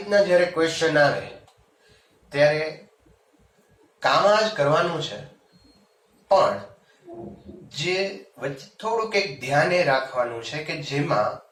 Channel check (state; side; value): identical; both; correlation 1.00